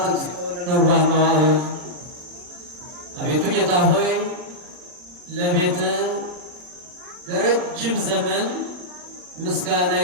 እግዚኦ ለነዋህ መዋዕል፣ አቤቱ ጌታ ሆይ ለቤትህ ለረጅም ዘመን ምስጋና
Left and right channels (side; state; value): left; late; 39 ms